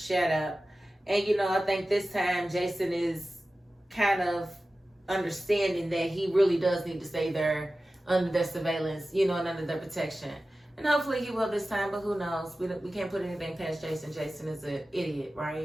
up. And, you know, I think this time Jason is kind of understanding that he really does need to stay there under their surveillance, you know, and under their protection. And hopefully he will this time, but who knows? We can't put anything past Jason. Jason is an idiot,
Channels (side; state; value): both; normal; correlation 0.95